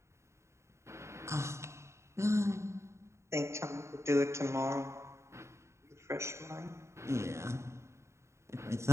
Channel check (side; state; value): left; late; 0.14 ms